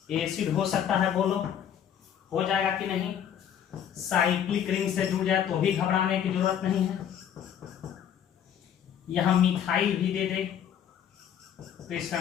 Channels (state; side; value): quieter; right; 9.3 dB